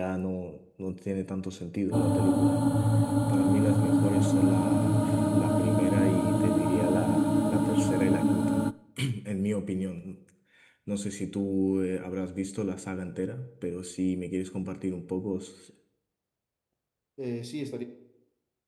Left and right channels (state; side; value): identical; both; correlation 1.00